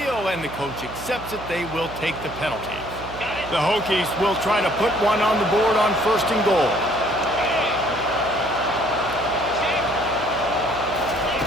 and the coach accepts it. They will take the penalty. The Hokies will try to put one on the board on 1st and goal.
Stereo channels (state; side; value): noise; right; hum, 13 dB below the sound